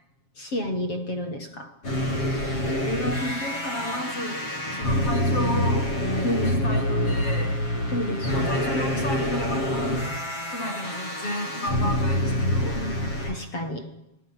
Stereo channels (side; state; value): right; late; 7.4 ms